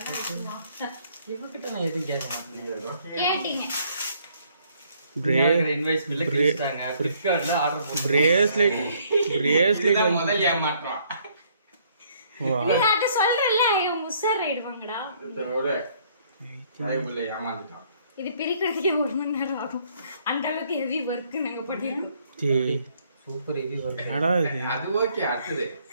இவகிட்ட நான் எதுவும் கேட்க மாட்டேன். கேட்டீங்க. இன்வாய்ஸ் பில்ல கிழிச்சாங்க. ஃபிளிப்கார்ட்ல ஆர்டர் போட்டு பிரேஸ்லெட் இதுதான் முதல் ஏமாற்றம். நான் சொல்றேன்ல முசர் ஆயிடுவாங்கடா. இதோட சாய்வுல ஏமாந்துட்டான். இது பிரிக்கிறதுக்கே 1 மணி நேரம் ஆகும். அந்த அளவுக்கு ஹெவி ஒர்க் நாங்க பண்ணிருக்கோம். Super heavy work. என்னடா இது? அது ஓகே அடுத்தது.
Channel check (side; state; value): both; inverted; correlation -0.64